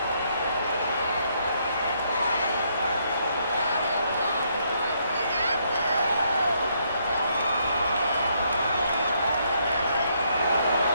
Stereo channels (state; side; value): inverted; both; correlation -0.73